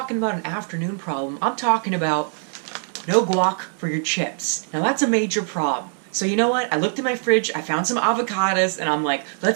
about an afternoon problem, I'm talking about no guac for your chips. Now that's a major problem. So you know what? I looked in my fridge, I found some avocados, and I'm like,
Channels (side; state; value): left; silent; digital silence